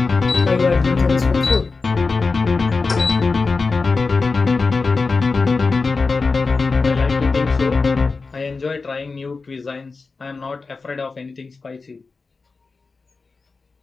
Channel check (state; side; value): quieter; right; 4.2 dB